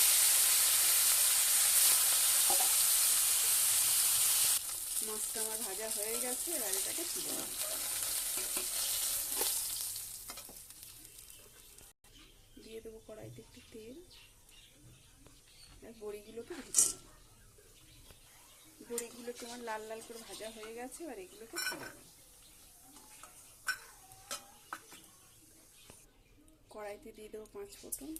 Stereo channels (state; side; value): identical; both; correlation 1.00